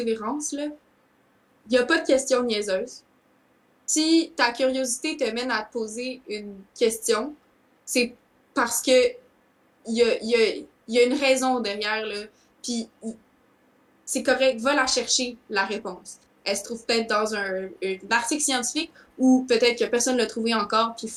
là. Il n'y a pas de question niaiseuse. Si ta curiosité te mène à te poser une question, c'est parce que il y a une raison derrière, là. Puis c'est correct, va la chercher, la réponse. Elle se trouve peut-être dans un article scientifique ou peut-être que personne ne l'a trouvé encore, puis il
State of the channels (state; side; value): identical; both; correlation 1.00